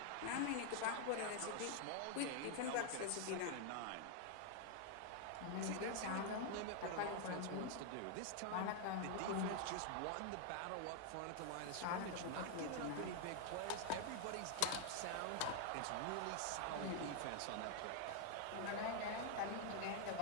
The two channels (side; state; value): both; different; correlation 0.00